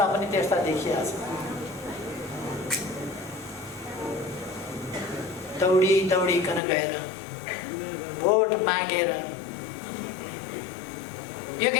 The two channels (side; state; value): right; drops out; at 6.6 s